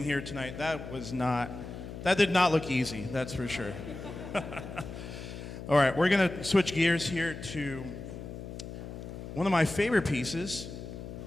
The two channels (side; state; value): left; noise; hum, 10 dB below the sound